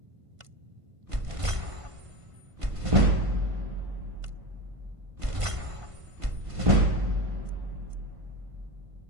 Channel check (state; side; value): late; left; 1.5 ms